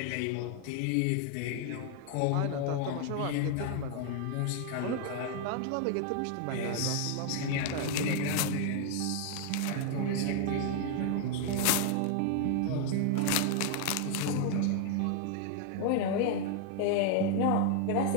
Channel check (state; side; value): different; both; correlation 0.00